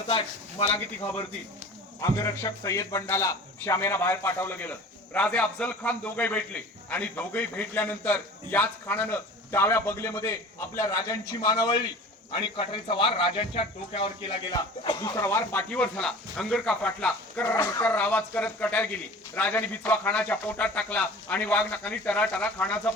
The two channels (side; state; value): both; normal; correlation 0.41